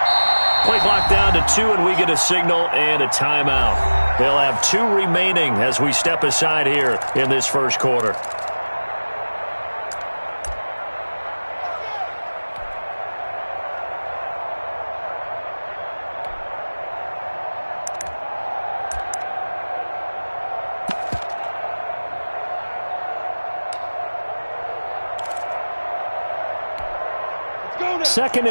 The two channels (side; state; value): both; inverted; correlation -1.00